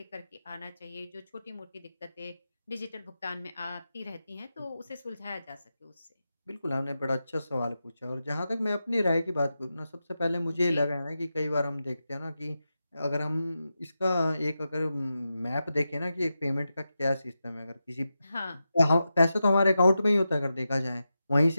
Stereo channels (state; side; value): inverted; both; correlation -0.90